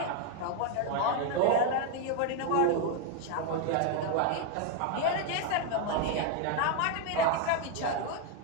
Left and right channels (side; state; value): both; different; correlation 0.01